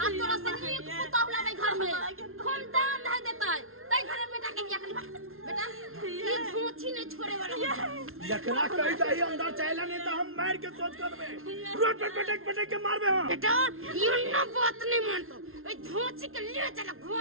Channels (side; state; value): left; late; 0.61 ms